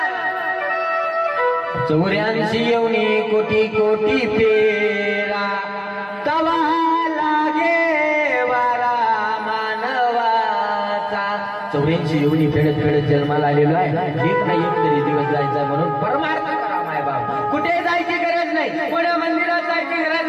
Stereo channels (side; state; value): both; identical; correlation 1.00